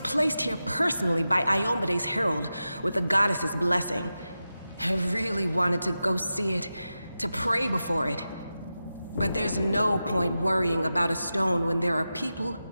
placed here personally by Iomede's herald, with the goddess's blessing. I really wanted to go see it, to pray before it. But there's no point worrying about a stone when there are people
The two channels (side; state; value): both; inverted; correlation -0.92